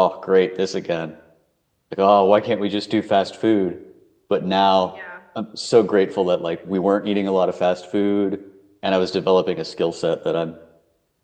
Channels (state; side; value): identical; both; correlation 1.00